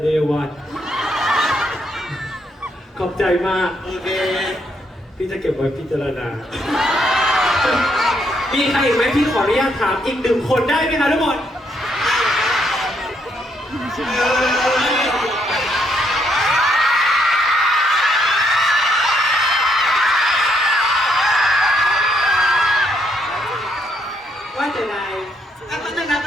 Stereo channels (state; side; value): normal; both; correlation 0.74